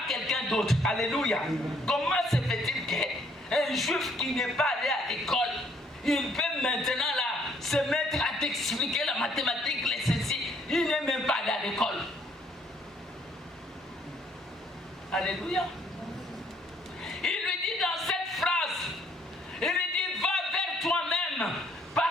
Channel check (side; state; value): both; normal; correlation 0.65